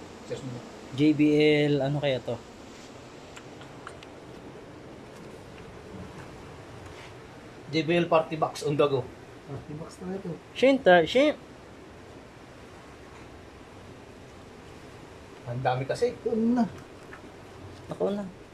JBL, ano kaya to? JBL Party Box on the go. Party box na ito. Shin. Ang dami kasi. Ito na. Ako na.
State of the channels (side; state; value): both; identical; correlation 1.00